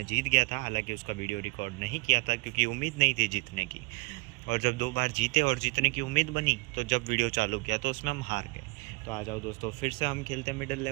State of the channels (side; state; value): left; quieter; 28.5 dB